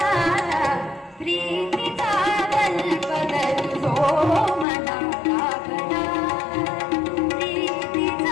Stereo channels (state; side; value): drops out; right; at 4.7 s